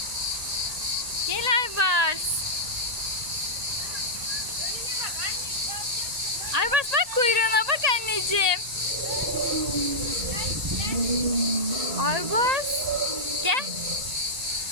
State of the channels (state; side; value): late; left; 1.8 ms